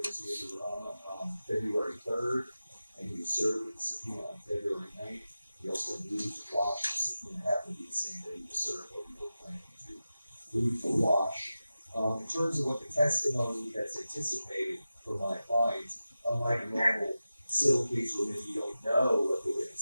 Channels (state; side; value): inverted; both; correlation -0.94